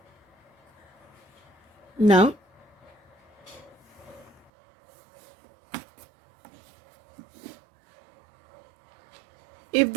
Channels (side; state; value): left; drops out; at 4.5 s